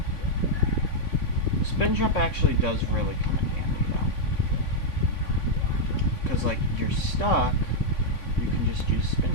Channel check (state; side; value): late; right; 3.6 ms